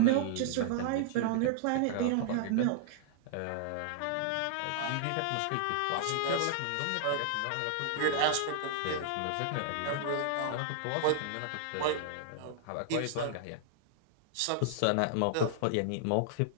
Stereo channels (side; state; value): both; different; correlation -0.01